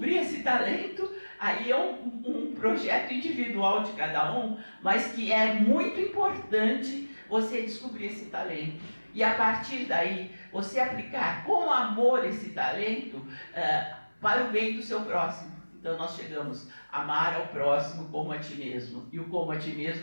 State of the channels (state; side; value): inverted; both; correlation -1.00